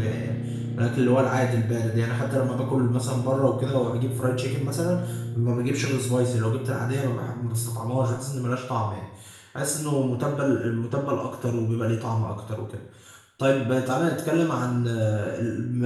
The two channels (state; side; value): identical; both; correlation 1.00